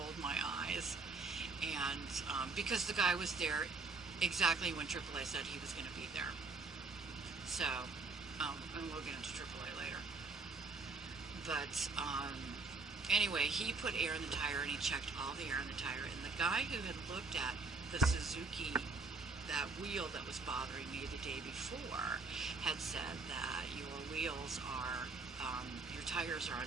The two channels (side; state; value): left; quieter; 3.9 dB